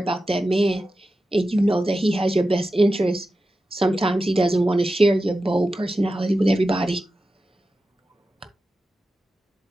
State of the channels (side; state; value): both; normal; correlation 0.92